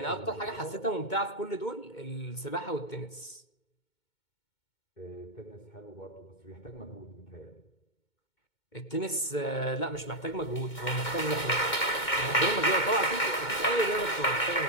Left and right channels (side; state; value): right; late; 2.2 ms